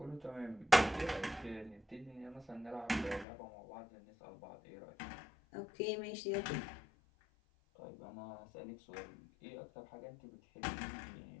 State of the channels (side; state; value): right; drops out; at 3.2 s